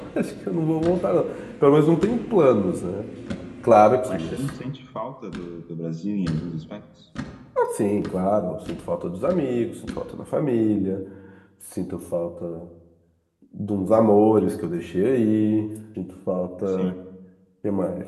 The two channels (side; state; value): both; identical; correlation 1.00